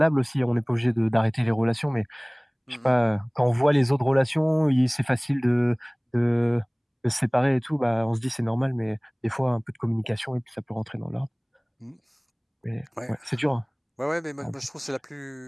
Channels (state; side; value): identical; both; correlation 1.00